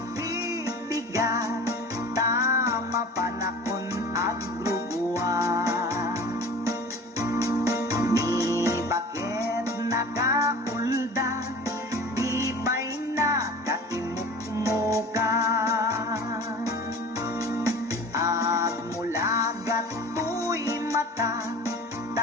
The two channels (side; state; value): both; normal; correlation 0.39